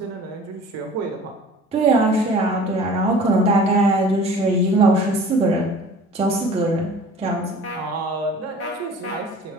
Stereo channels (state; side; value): normal; both; correlation 0.45